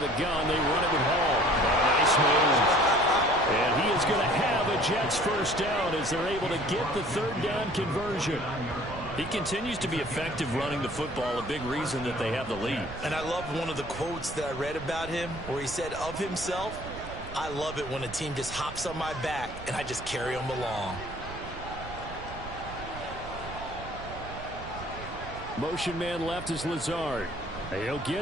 the gun, they run it with Hall. Nice move. And he is going to have a Jets first down as they're able to get the 3rd down conversion. He continues to be effective running the football, a big reason that they have the lead. And I love one of the quotes that I read about him where he said of himself, I love it when a team just hops on my back and I just carry them along. Motion man left is Lazard. He'll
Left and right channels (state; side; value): noise; right; rumble, 12 dB below the sound